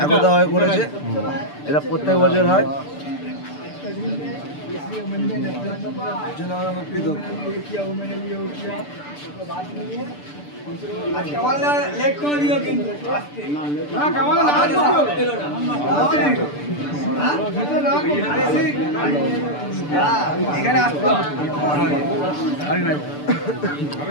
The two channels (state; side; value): late; right; 6.8 ms